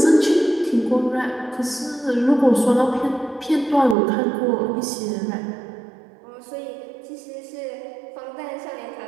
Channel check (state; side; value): drops out; left; at 4.0 s